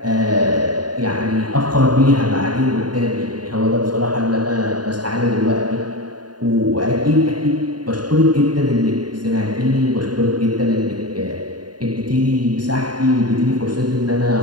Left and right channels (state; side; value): late; left; 0.70 ms